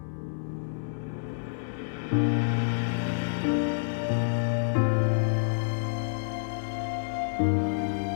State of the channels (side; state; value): right; silent; digital silence